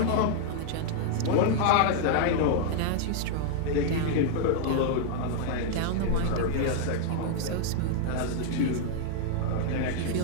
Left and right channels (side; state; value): both; different; correlation 0.00